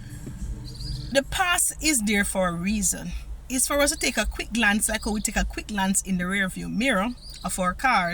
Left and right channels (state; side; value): identical; both; correlation 1.00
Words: The past is there for a reason. It's for us to take a quick glance, like how we take a quick glance in the rearview mirror of our